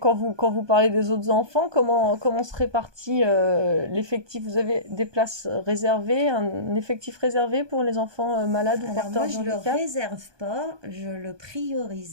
quand vous parlez des autres enfants, comment se répartit l'effectif? Vous avez des places réservées, un effectif réservé pour les enfants malades ou Alors porteurs moi, de je ne le handicap? réserve pas, je le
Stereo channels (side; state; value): left; late; 1.2 ms